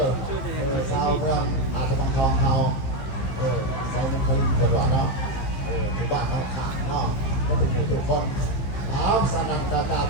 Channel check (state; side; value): late; right; 15 ms